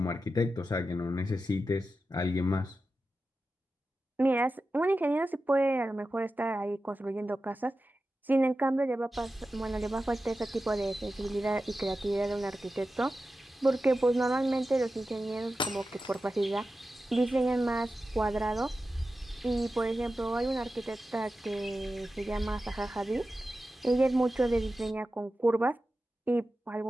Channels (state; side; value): normal; both; correlation 0.92